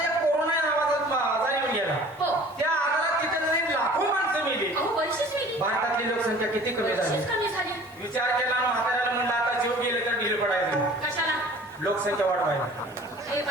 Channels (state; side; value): normal; both; correlation 0.48